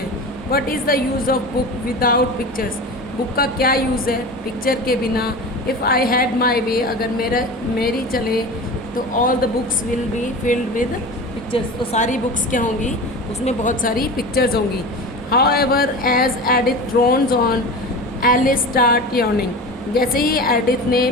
What is the use of book without pictures. Book का क्या यूज़ है पिक्चर के बिना. इफ़ आई हैड माई वे, अगर मेरी चले तो all the books will be filled with pictures. तो सारी बुक्स क्या होंगी, उसमें बहुत सारी पिक्चर्स होंगी. However, as Edith drones on, Alice start yawning. जैसे ही एडिथ ने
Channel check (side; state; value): both; normal; correlation 0.32